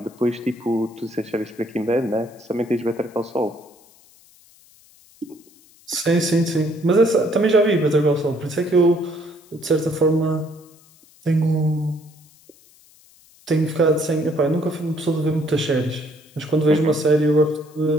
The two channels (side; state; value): left; noise; hiss, 28 dB below the sound